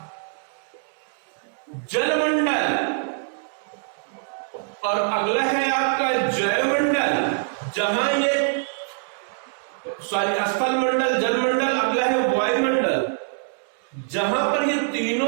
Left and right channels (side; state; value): left; silent; digital silence